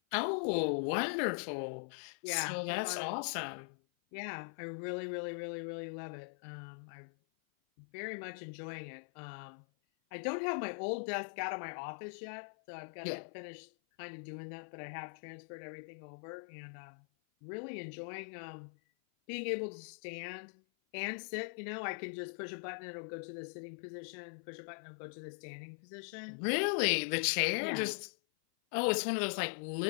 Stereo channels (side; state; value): right; silent; 51 dB below the other